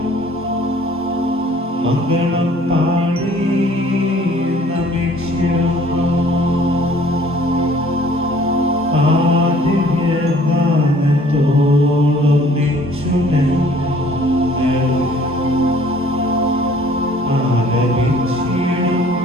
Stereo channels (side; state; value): both; normal; correlation 0.54